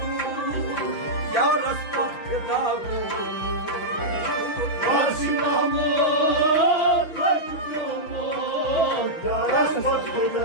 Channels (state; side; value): late; right; 6.0 ms